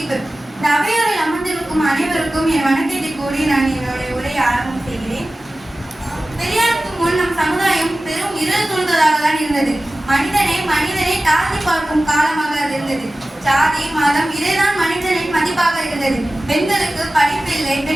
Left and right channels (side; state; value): both; normal; correlation 0.96